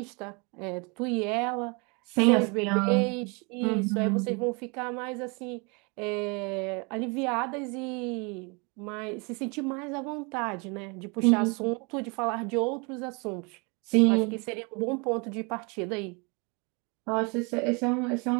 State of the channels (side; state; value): left; quieter; 31.2 dB